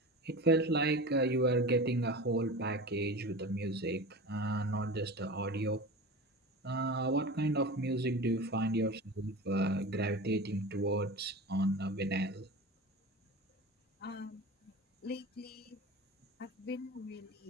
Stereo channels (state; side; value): normal; both; correlation 0.31